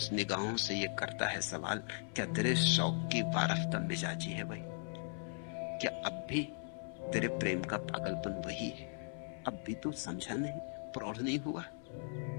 निगाहों से ये करता है सवाल, क्या तेरे शौक की वारफ्ता मिजाजी है वही? क्या अब भी तेरे प्रेम का पागलपन वही है? अब भी तू समझा नहीं, प्रौढ़ नहीं हुआ?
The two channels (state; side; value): silent; right; 52 dB below the other